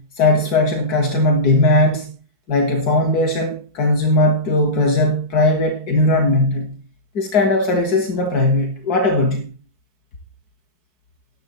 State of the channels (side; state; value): right; late; 4.6 ms